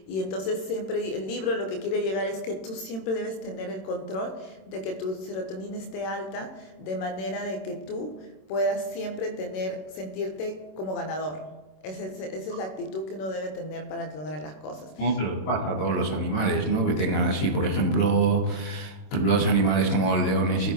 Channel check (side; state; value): right; late; 27 ms